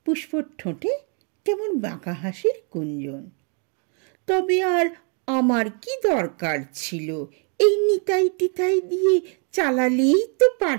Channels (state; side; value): quieter; left; 39.5 dB